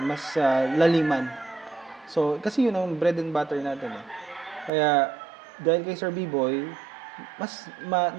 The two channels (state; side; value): drops out; left; at 4.7 s